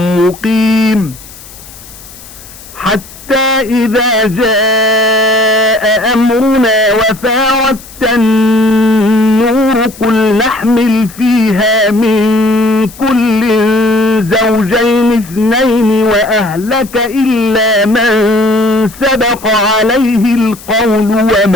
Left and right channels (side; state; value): left; noise; hiss, 19 dB below the sound